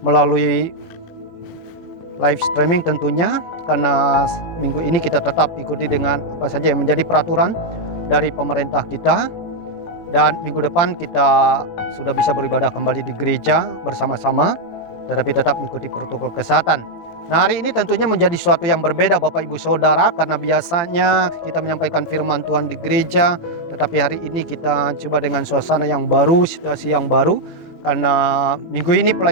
melalui live streaming tentunya, karena minggu ini kita tetap ikuti dengan apa saja yang menjadi peraturan dari pemerintah kita. Dan minggu depan kita sudah bisa beribadah kembali di gereja bersama-sama, tetapi tetap mengikuti protokol kesehatan. Nah, hari ini tentunya menjadi sesuatu yang berbeda Bapak Ibu Saudara, karena biasanya kita menyampaikan firman Tuhan di gereja, tetapi hari ini kita coba dengan suasana yang baru, situasi yang baru, karena minggu ini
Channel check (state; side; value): late; right; 18 ms